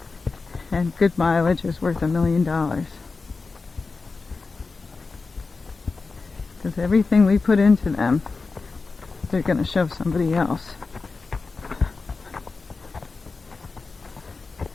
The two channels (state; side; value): quieter; right; 4.2 dB